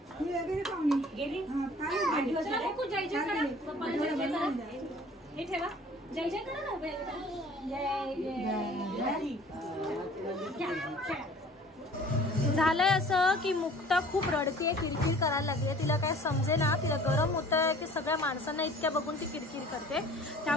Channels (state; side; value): normal; both; correlation 0.49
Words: हे ठेवा. जय जय करा ना. झालंय असं की मुक्ता खूप रडते, किरकिर करायला लागली. तिला काय समजे ना. तिला गरम होत आहे की सगळ्या माणसांना इतक्या बघून ती किरकिर करते.